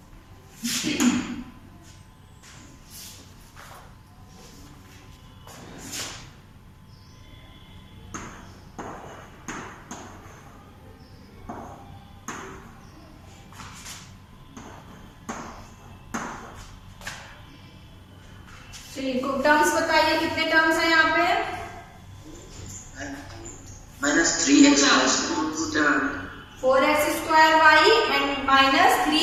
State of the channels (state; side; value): identical; both; correlation 1.00